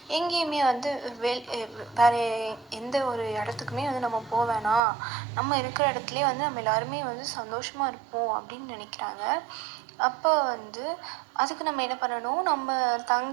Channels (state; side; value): drops out; left; at 4.8 s